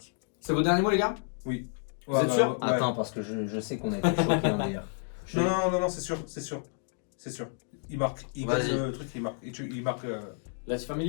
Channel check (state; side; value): silent; right; digital silence